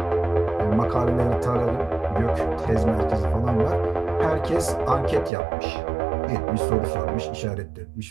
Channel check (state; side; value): drops out; left; at 5.3 s